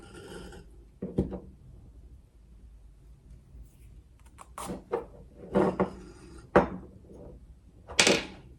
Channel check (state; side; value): identical; both; correlation 1.00